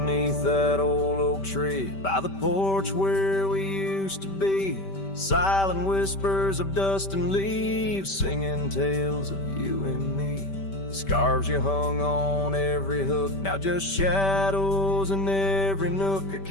that old oak tree, by the porch where we used to be, silent whispers of dust and leaves, singing tales of you and me. Scarves you hung on every hook, now just shadows in every nook. A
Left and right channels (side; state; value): right; late; 5.1 ms